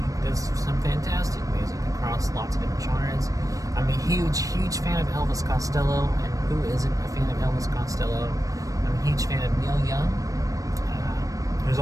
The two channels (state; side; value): late; left; 0.16 ms